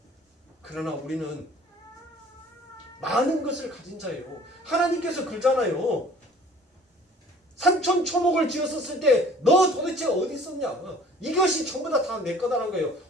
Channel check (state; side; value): normal; both; correlation 0.51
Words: 그러나 우리는 많은 것을 가진 자예요. 하나님께서 그러잖아요. 산천초목을 지었었을 때 너 도대체 어디 있었냐? 이것이 전부 다 내 거다라는 거예요.